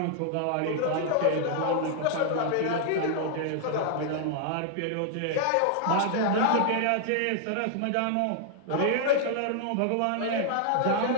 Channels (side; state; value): both; different; correlation 0.00